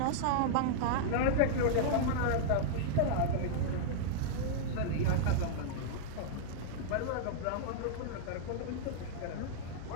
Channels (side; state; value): both; different; correlation -0.02